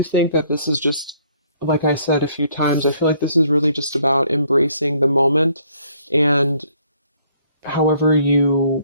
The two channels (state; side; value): inverted; both; correlation -0.64